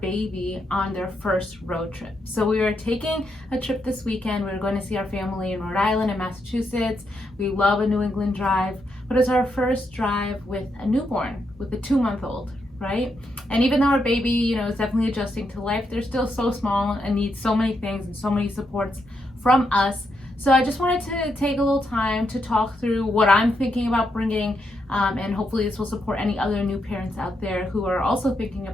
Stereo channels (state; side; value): normal; both; correlation 0.81